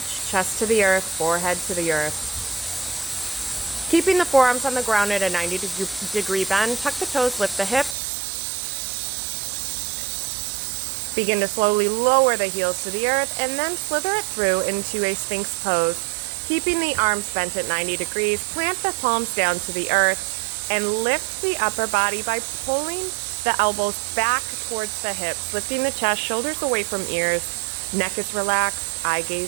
chest to the earth, forehead to the earth. Keeping the forearms on the ground at a 90-degree bend, tuck the toes, lift the hips. Begin to slowly lower the heels to the earth, and then slither it through into a Sphinx pose. Keeping the arms bent at 90 degrees, plant the palms down to the earth, and lift the upper body by pulling the elbows back towards the hips, lifting the chest, shoulders away from ears, neck is relaxed, eye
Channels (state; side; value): drops out; left; at 8.0 s